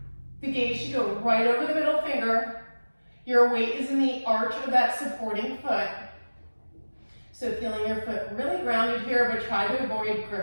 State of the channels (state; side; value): inverted; both; correlation -1.00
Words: The gaze should go right over the middle finger. Your weight is in the arch of that supporting foot. So feeling your foot really grounded here, but try to avoid